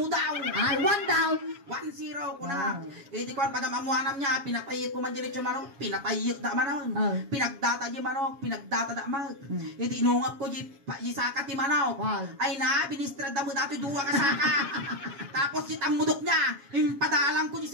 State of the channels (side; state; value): left; late; 7.3 ms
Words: daw. Ay, 1 down. 1-0 ko na. Eh di kwan, pagamamuanam niya, pinatayik ko man dilit yung manok, pinatayik da manaw. Pinagdata di manok, pinagdata da manok. Eh di inungap ko di saka ti manaw. Ay na, binistrad da mo dati duwa ka saka. Tapos si tamudok niya, impadalang ko di